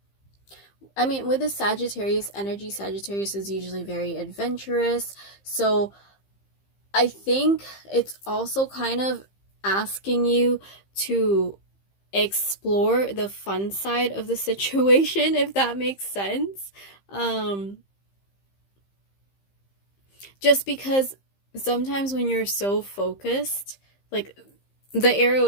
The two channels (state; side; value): late; right; 15 ms